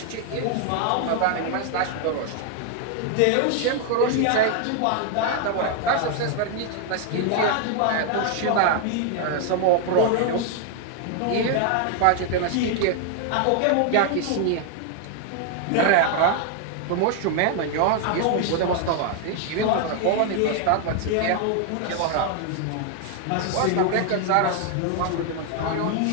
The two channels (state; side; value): different; both; correlation 0.00